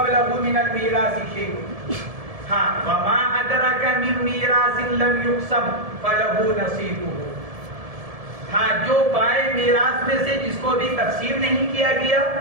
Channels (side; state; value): left; late; 1.7 ms